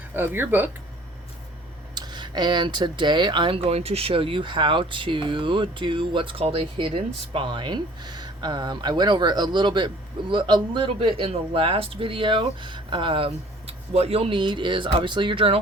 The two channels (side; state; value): both; normal; correlation 0.52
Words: of your book. And today I'm going to show you how to do what's called a hidden spine. I went over a little bit in the last video. What you'll need is obviously your